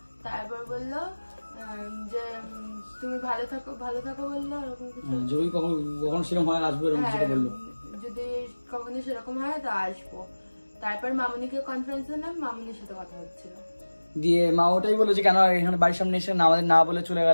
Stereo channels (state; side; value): inverted; both; correlation -1.00